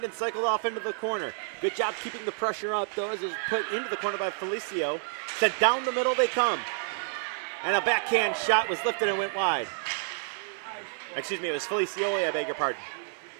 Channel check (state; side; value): silent; left; digital silence